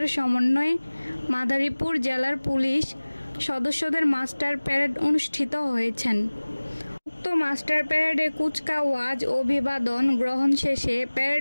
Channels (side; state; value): both; inverted; correlation -1.00